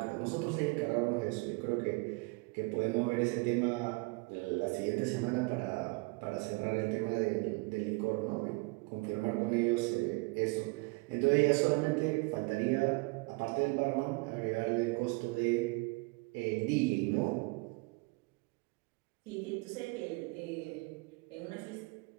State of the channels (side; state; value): left; quieter; 28.1 dB